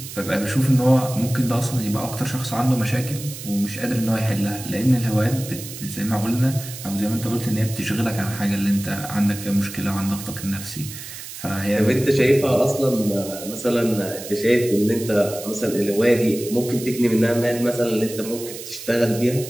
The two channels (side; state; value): right; noise; hiss, 12 dB below the sound